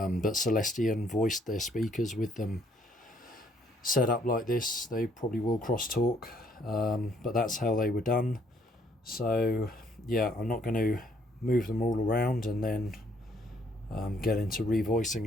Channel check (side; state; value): both; normal; correlation 0.66